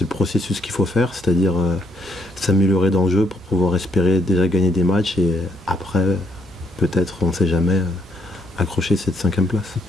le processus qu'il faut faire, c'est-à-dire s'améliorer dans le jeu pour pouvoir espérer déjà gagner des matchs et après peut-être, on ne sait jamais, accrocher cette 5e place.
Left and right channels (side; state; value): both; normal; correlation 0.72